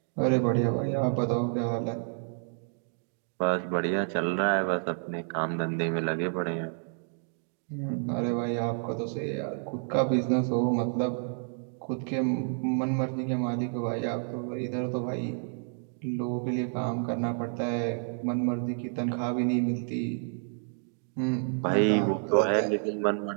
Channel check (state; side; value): silent; left; 58 dB below the other